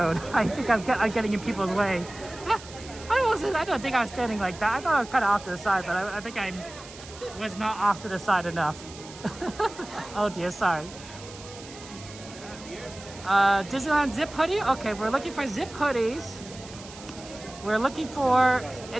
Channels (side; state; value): right; noise; hiss, 17 dB below the sound